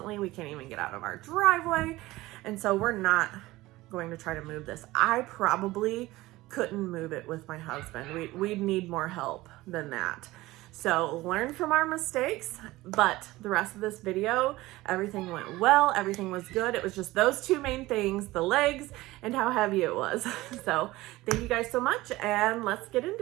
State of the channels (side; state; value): left; quieter; 18.6 dB